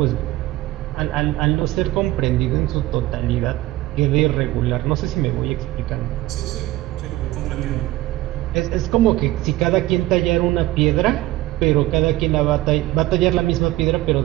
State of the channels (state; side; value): quieter; left; 16.8 dB